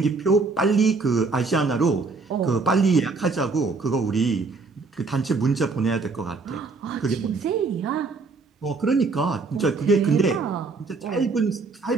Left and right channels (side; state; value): left; quieter; 4.1 dB